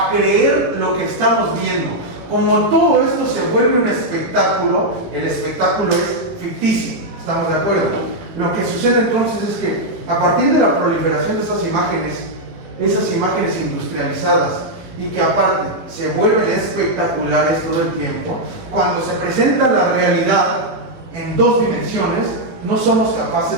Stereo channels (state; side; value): late; left; 18 ms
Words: creer lo que estamos viendo. Como todo esto se vuelve un espectáculo, el espectáculo es ficticio, ¿estamos de acuerdo? Lo que sucede entonces es que a partir de la proliferación de esas imágenes industrializadas, y que aparte se vuelven espectaculares todo el tiempo, cuando se presenta la realidad en 2 dimensiones, no somos